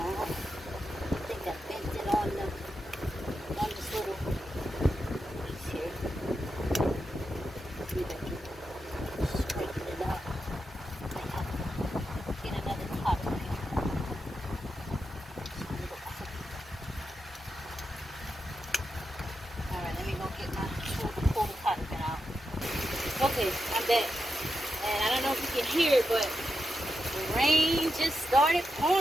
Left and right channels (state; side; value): normal; both; correlation 0.87